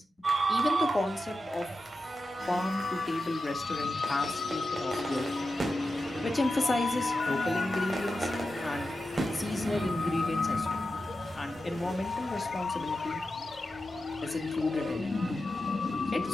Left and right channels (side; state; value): both; normal; correlation 0.91